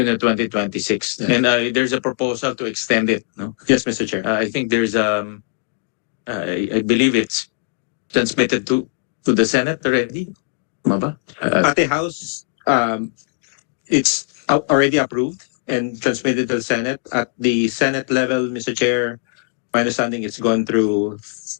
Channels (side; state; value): right; silent; digital silence